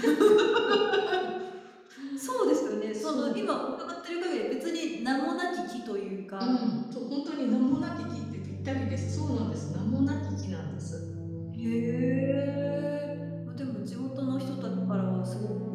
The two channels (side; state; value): both; identical; correlation 1.00